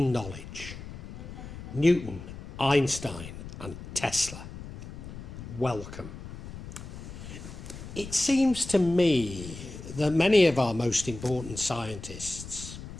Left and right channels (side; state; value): left; noise; rumble, 12 dB below the sound